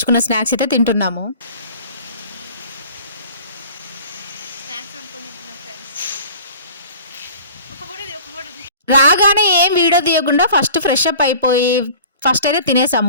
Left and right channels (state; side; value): inverted; both; correlation -0.44